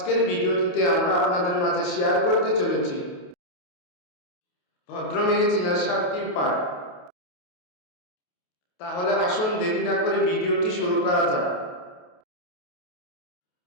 ভিডিওটিতে আমরা আপনাদের মাঝে শেয়ার করতে চলেছি ভদ্র মেয়ে চেনার 7টি উপায়। তাহলে আসুন দেরি না করে ভিডিওটি শুরু করা যাক।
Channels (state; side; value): late; right; 28 ms